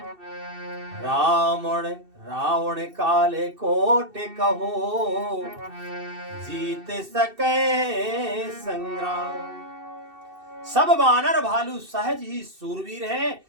रावण काले कोट कहो, जीत सके संग्राम। सब वानर भालू सहज ही सूरवीर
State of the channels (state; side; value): late; left; 2.7 ms